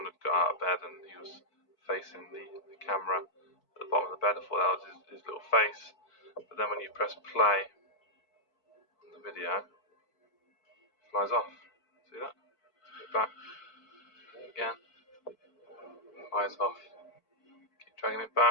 had got out of bed and he was facing the camera at the bottom of the bed, I thought that was his little face. But then when you press play on the video, it flies off. See that? Get back. Again. Flies off. Keep dragging it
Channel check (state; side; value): late; right; 4.5 ms